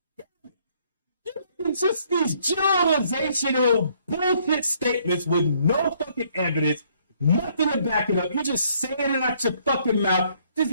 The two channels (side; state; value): both; inverted; correlation -0.66